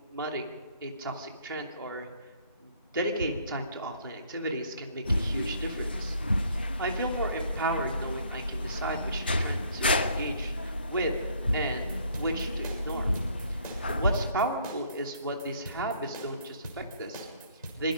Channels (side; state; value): both; inverted; correlation -0.62